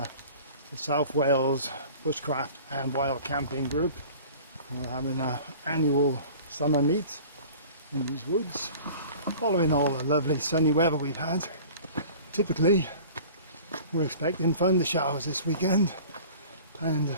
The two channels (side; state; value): both; inverted; correlation -0.43